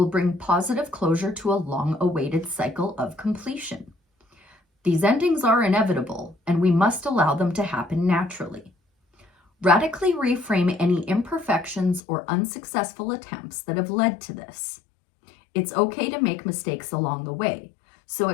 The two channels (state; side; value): drops out; right; at 12.0 s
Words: bring positive closure to a long-awaited cycle of completion. These endings are inevitable, and we must allow them to happen naturally. Radically reframe any imperfections or unsuccessful attempts that have led to this. It's okay to make mistakes along the way, so